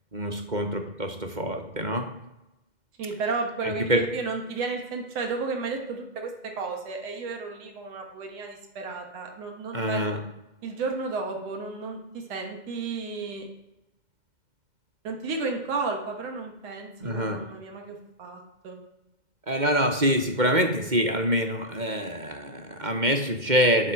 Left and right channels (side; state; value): left; late; 2.1 ms